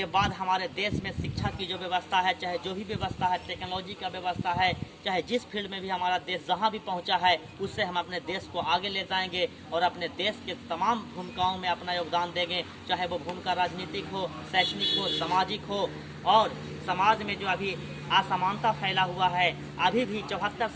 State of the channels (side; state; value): both; identical; correlation 1.00